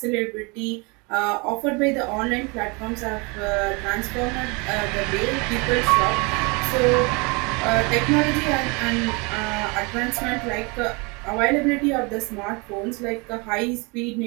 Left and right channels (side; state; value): left; quieter; 29.5 dB